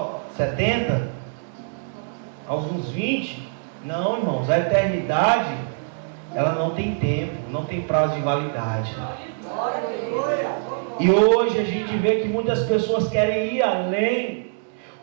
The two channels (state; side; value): silent; left; digital silence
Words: 70? Alguns 20? Não, irmãos, a eternidade ela não tem tempo, não tem prazo de validade. E hoje a gente vê que muitas pessoas querem ir além